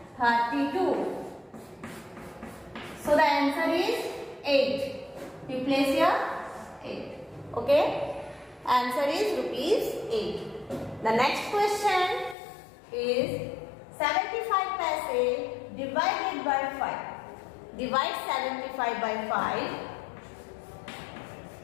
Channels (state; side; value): drops out; right; at 12.4 s